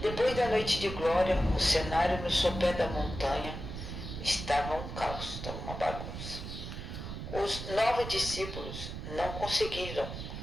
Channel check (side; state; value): right; noise; rumble, 8 dB below the sound